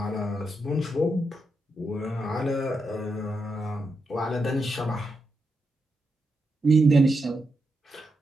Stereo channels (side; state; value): both; normal; correlation 0.84